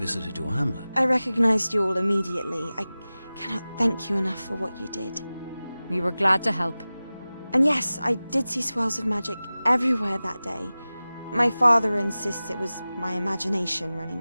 your hamlet. I recognized you all immediately. I cannot thank you enough for what you did. We were glad to help. And yes, I did see swirls of magic everywhere that day. My father insists it was my imagination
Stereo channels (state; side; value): inverted; both; correlation -0.97